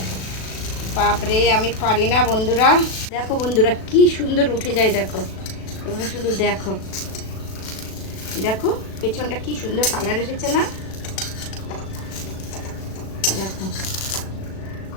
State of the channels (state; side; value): late; right; 37 ms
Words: বাপরে, আমি পারি না বন্ধুরা। দেখো বন্ধুরা, কি সুন্দর উঠে যায়। দেখো তোমরা শুধু দেখো, দেখো পেছনটা কি সুন্দর কালার এসেছে না? দেখো